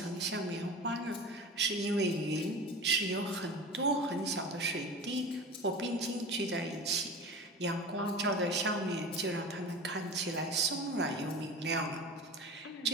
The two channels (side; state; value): both; normal; correlation 0.33